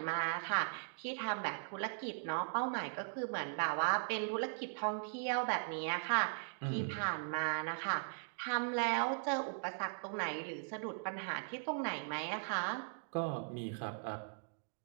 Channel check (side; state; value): left; silent; digital silence